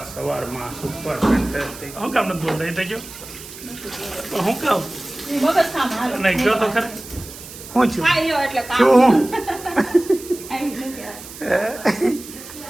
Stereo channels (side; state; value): right; noise; hiss, 15 dB below the sound